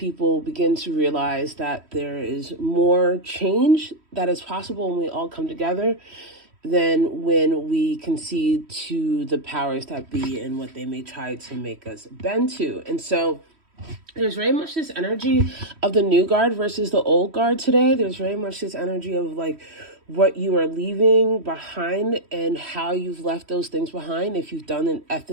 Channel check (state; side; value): late; left; 3.1 ms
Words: begin to realize that there is more change that is possible when we all come together than when we concede to the powers that be and what they may try to make us bend to. And so there's very much this energy of the new guard versus the old guard today. There's very much this energy of like what you are leaving behind and how you've left those things behind. If you've done it